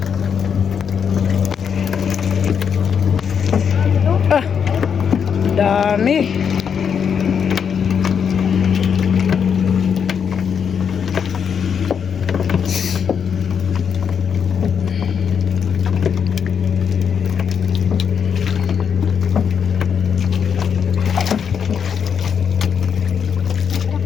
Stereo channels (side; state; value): right; quieter; 7.2 dB